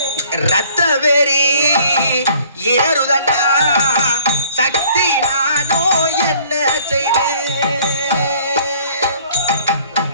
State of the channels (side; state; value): both; inverted; correlation -0.56